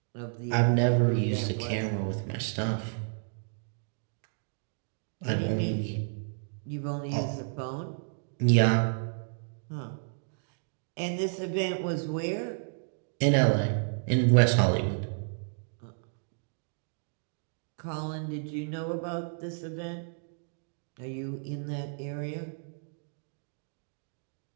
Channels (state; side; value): silent; left; digital silence